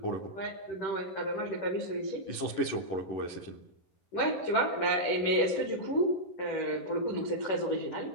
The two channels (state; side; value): late; right; 11 ms